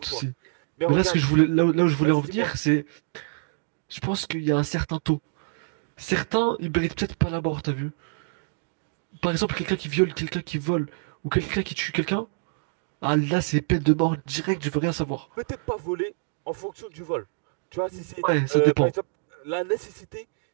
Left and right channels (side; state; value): left; silent; digital silence